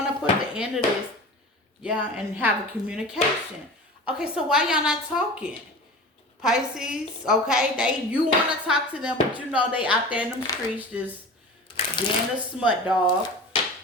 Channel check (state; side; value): normal; both; correlation 0.35